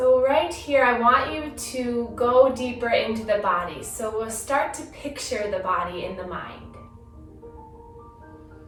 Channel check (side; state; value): both; identical; correlation 1.00